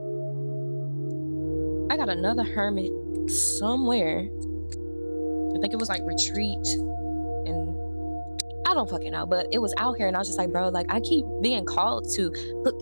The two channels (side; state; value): both; inverted; correlation -1.00